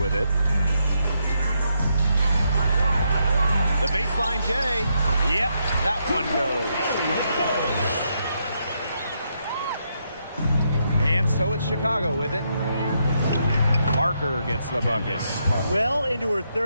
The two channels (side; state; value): both; inverted; correlation -0.79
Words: it. The baseline J. Yep, that one goes. And so it's Chicago with it. Parker gets the bucket. Well into her